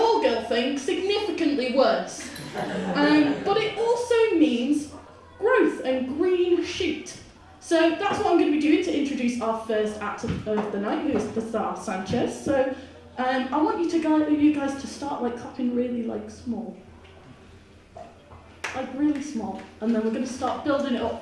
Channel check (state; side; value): identical; both; correlation 1.00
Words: girl thing significantly worse. But it also means growth and green shoot. So that's what I'm going to be doing to introduce our first actor of the night, who is the star Sanchez. So I want you guys to start like clapping really small. Like really small. And then we're going to start building it up